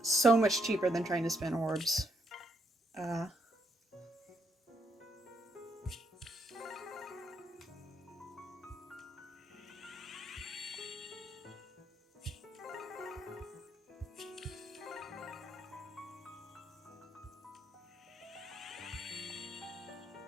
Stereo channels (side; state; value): both; normal; correlation 0.75